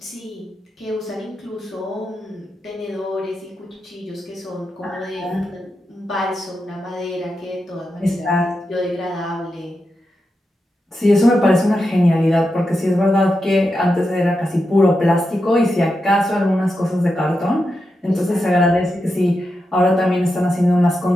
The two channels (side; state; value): both; normal; correlation 0.88